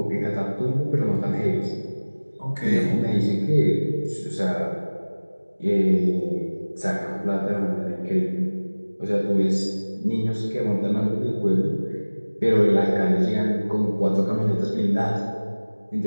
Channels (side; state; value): both; inverted; correlation -1.00